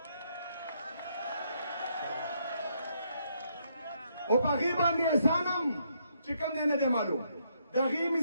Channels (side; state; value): both; inverted; correlation -0.74